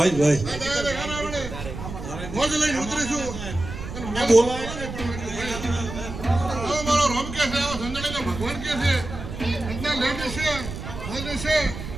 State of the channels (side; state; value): right; noise; rumble, 9 dB below the sound